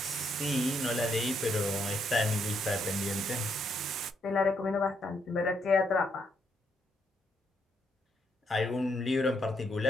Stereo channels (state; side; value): normal; both; correlation 0.75